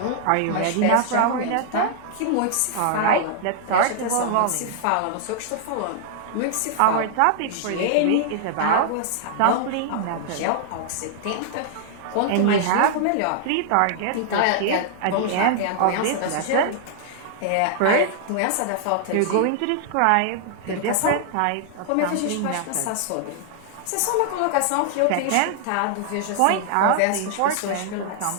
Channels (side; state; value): both; different; correlation 0.00